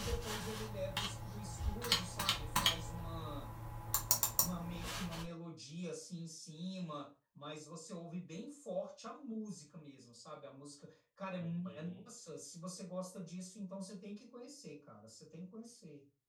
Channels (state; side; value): identical; both; correlation 1.00